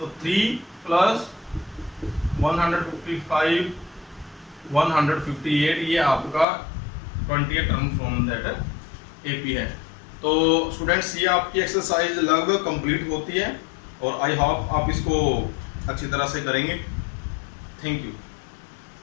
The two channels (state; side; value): drops out; right; at 6.5 s